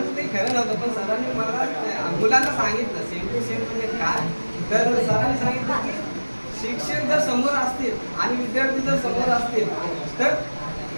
ते खरं नव्हतं. पण सरांनी मला मुलांना सांगितलं सेम टू सेम म्हणजे काय. तर सरांनी सांगितलं की शिक्षक जर समोर असतील आणि विद्यार्थी जर समोर असतील तर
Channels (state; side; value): inverted; both; correlation -1.00